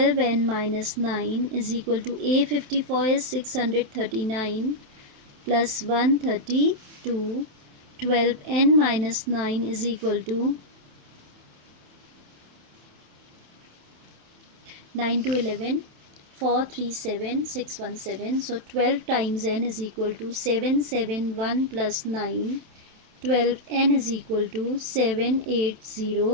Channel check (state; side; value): late; left; 27 ms